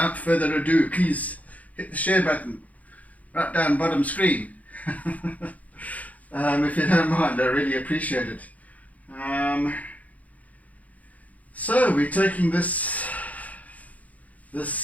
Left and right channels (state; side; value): late; right; 0.072 ms